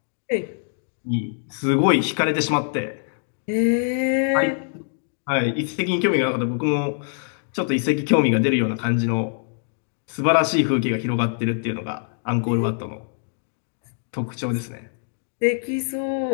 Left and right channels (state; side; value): silent; right; digital silence